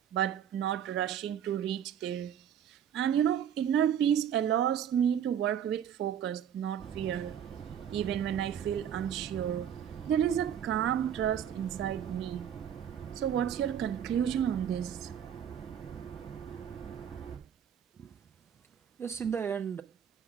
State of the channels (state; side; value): quieter; left; 9.1 dB